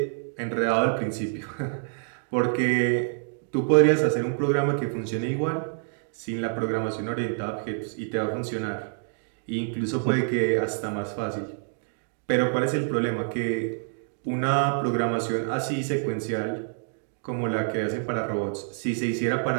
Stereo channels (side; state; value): left; silent; digital silence